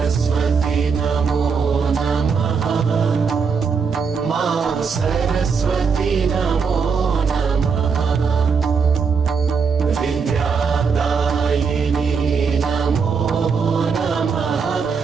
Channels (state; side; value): quieter; left; 5.7 dB